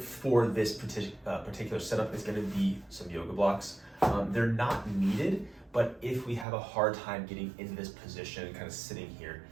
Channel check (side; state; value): left; drops out; at 6.5 s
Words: this particular setup is going to be some yoga blocks. They're not needed, but if we have a hard time getting into this position, kind of sitting here,